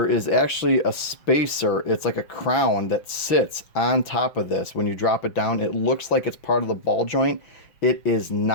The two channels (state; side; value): late; right; 6.0 ms